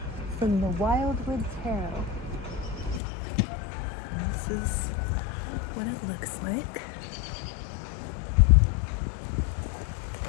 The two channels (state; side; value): drops out; right; at 3.0 s